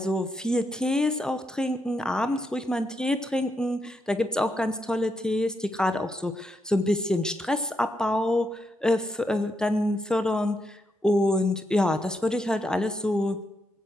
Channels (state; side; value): normal; both; correlation 0.81